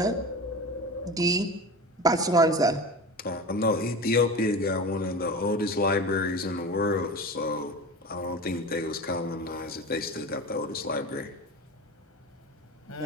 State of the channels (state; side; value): normal; both; correlation 0.30